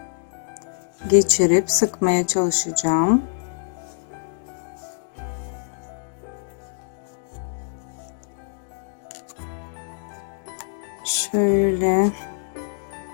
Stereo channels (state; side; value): silent; right; digital silence